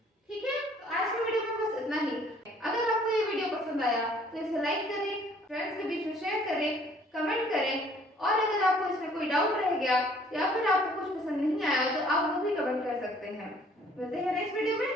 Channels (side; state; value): both; normal; correlation 0.58